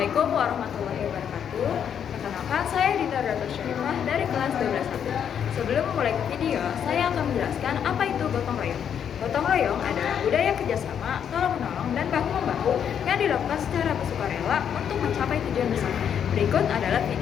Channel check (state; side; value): quieter; right; 8.4 dB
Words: Assalamualaikum warahmatullahi wabarakatuh. Perkenalkan, saya Dinda Ratu Syarifah dari kelas 12 A. Sebelum memulai video, saya akan menjelaskan apa itu gotong royong. Gotong royong adalah budaya kerjasama, tolong-menolong, dan bahu-membahu yang dilakukan secara bersukarela untuk mencapai tujuan bersama. Berikut adalah